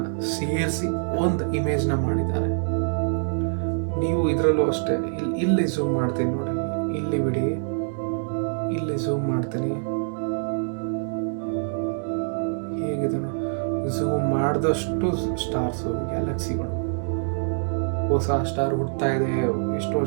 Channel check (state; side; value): silent; left; digital silence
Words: ಸೇರಿಸಿ ಒಂದು ಇಮೇಜ್ನ ಮಾಡಿದ್ದಾರೆ. ನೀವು ಇದರಲ್ಲೂ ಅಷ್ಟೇ. ಇಲ್ಲಿ ಝೂಮ್ ಮಾಡ್ತೀನಿ ನೋಡಿ, ಇಲ್ಲಿ ಬಿಡಿ, ಇಲ್ಲಿ ಝೂಮ್ ಮಾಡ್ತೀನಿ. ಹೇಗಿದೆ ಝೂಮ್ ಮಾಡಿದಷ್ಟು ಸ್ಟಾರ್ಸು, ಗ್ಯಾಲಕ್ಸಿಗಳು, ಹೊಸ ಸ್ಟಾರ್ ಹುಡ್ತಾ ಇದೆ, ಎಷ್ಟೋ